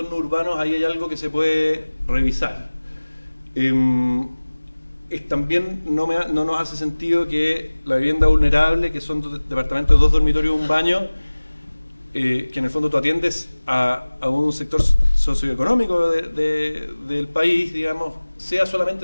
urbanos ahí hay algo que se puede revisar. También no nos hace sentido que la vivienda vulnerable, que son departamentos de 2 dormitorios y un baño, que en el fondo tú atiendes a un sector socioeconómico del país, digamos, sea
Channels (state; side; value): inverted; both; correlation -1.00